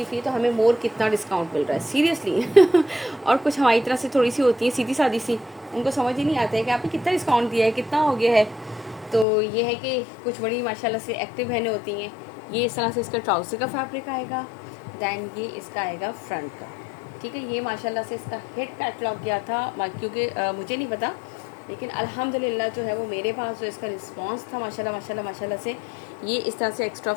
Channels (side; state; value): right; drops out; at 9.2 s